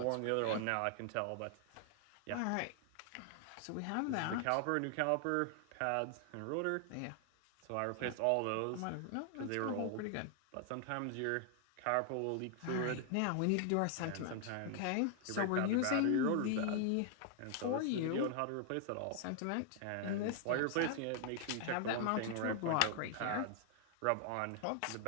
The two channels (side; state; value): both; different; correlation 0.00